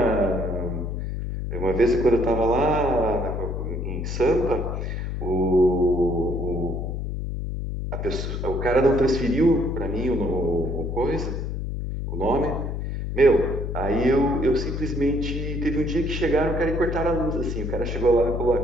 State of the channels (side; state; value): left; noise; hum, 4 dB below the sound